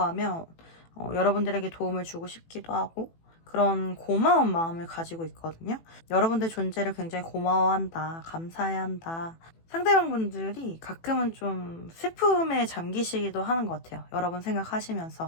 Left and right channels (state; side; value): late; right; 18 ms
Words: 하면 여러분들에게 도움을 주고 싶기도 하고 그런 고마운 마음을 가지고 있거든요. 여러분들 존재를 굉장히 고마워한다, 감사해야 한다. 상대방 분들이 가끔은 좀 슬픔에 잠기시기도 하는 것 같아요. 여러분